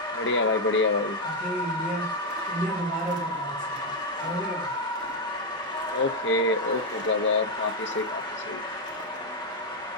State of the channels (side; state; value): both; normal; correlation 0.03